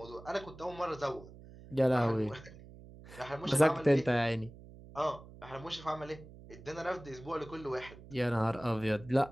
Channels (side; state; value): right; noise; hum, 18 dB below the sound